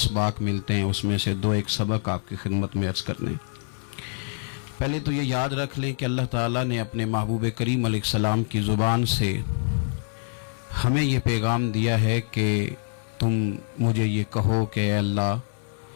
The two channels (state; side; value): silent; right; 59 dB below the other